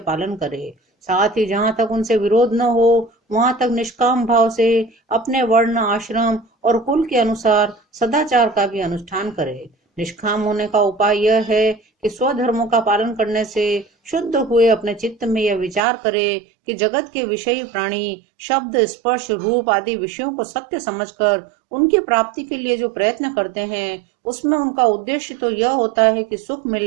पालन करे। साथ ही जहाँ तक उनसे विरोध न हो वहां तक निष्काम भाव से अपने वर्ण, आश्रम और कुल के अनुसार सदाचार का भी अनुष्ठान करे। निष्काम होने का उपाय यह है कि स्वधर्मों का पालन करने से शुद्ध हुए अपने चित्त में यह विचार करे कि जगत के विषयी प्राणी शब्द, स्पर्श, रूप आदि विषयों को सत्य समझकर उनकी प्राप्ति के लिए जो प्रयत्न करते हैं उसमें उनका उद्देश्य तो यह होता है कि सुख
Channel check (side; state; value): left; drops out; at 15.8 s